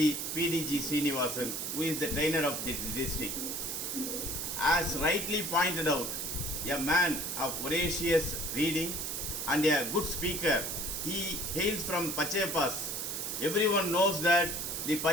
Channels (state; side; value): noise; right; hiss, 3 dB below the sound